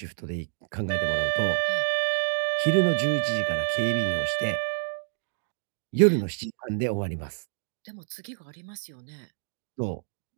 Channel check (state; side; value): silent; left; digital silence